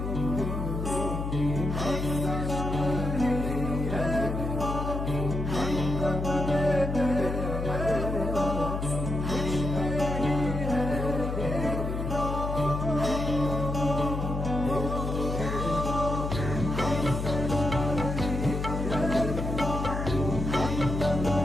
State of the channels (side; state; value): left; noise; hum, 3 dB below the sound